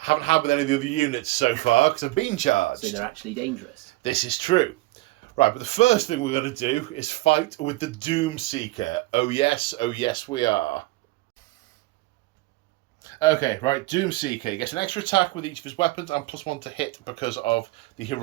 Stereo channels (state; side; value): quieter; left; 20.2 dB